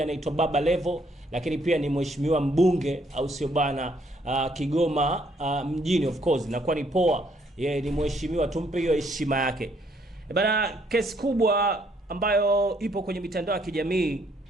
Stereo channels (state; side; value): normal; both; correlation 0.68